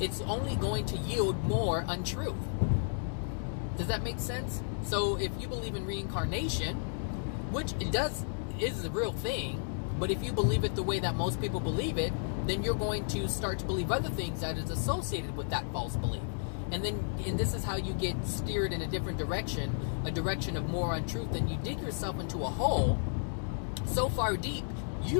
only going to yield more untruth. Does that make sense? So if you believe in reincarnation, which is a real thing, but if you believe it the way that most people believe it, then you're going to start to believe other things that is associated with that false belief. And this is how you get steered in a different direction, a direction of more untruth, and you dig yourself into a hole so far deep, you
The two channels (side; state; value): right; silent; digital silence